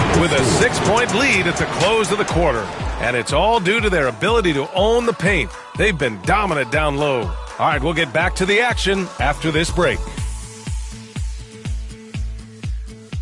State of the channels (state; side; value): identical; both; correlation 1.00